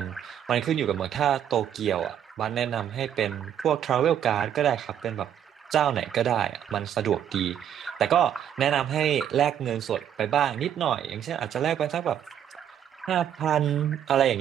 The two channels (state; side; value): quieter; left; 9.7 dB